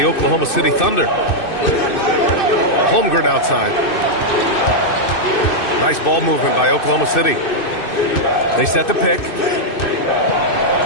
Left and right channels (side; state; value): right; late; 2.6 ms